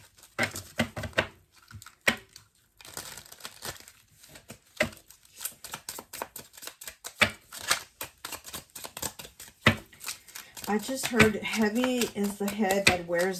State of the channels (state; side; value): identical; both; correlation 1.00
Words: I just heard heavy is the head that wears